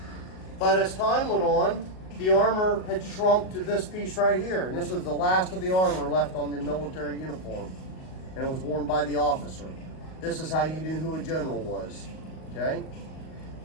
But as time went on, the armor had shrunk to this piece right here. And this was the last of the armor left on the military uniform. And it was worn by the officer. This is how you knew who a general was, okay?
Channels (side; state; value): right; late; 38 ms